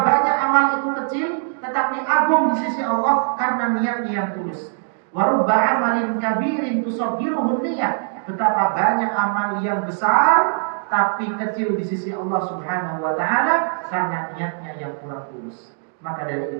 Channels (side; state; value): left; silent; digital silence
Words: banyak amal itu kecil tetapi agung di sisi Allah karena niatnya yang tulus. Wa rubba amalin kabirin tusaggiruhun niyah. Betapa banyak amal yang besar tapi kecil di sisi Allah Subhanahu wa Ta'ala karena niatnya yang kurang tulus. Maka